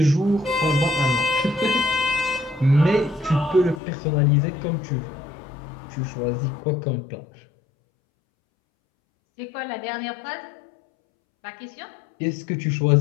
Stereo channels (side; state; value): right; drops out; at 3.8 s